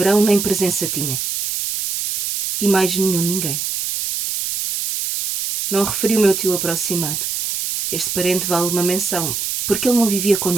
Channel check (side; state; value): right; noise; hiss, 2 dB below the sound